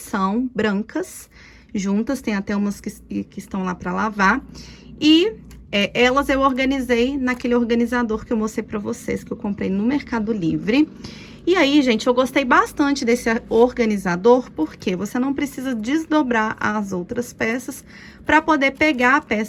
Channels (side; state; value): both; identical; correlation 1.00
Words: brancas, juntas. Tem até umas que estão lá para lavar. E elas eu organizei naquele organizador que eu mostrei para vocês, que eu comprei no Mercado Livre. E aí, gente, eu gostei bastante desse organizador, porque você não precisa desdobrar as outras peças para poder pegar a